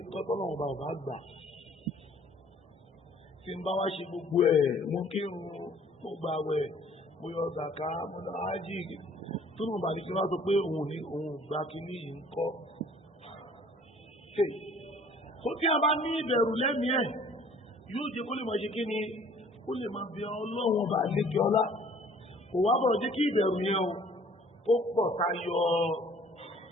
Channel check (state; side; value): normal; both; correlation 0.55